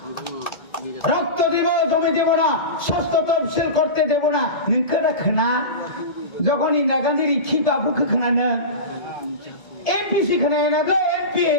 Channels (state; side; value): late; right; 1.7 ms